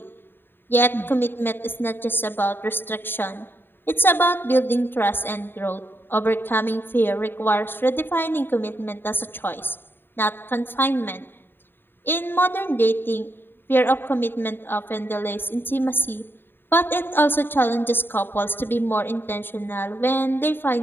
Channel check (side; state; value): right; late; 0.099 ms